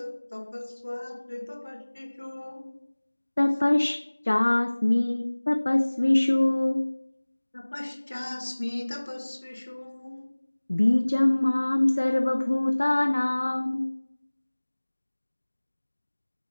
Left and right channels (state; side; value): inverted; both; correlation -1.00